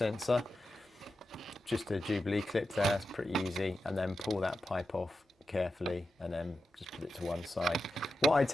just a Jubilee clip there, it's pretty easy, and then pull that pipe off carefully and then just put it to one side. What I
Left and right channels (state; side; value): normal; both; correlation 0.90